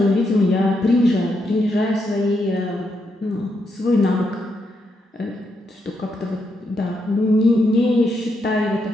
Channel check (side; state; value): both; normal; correlation 0.80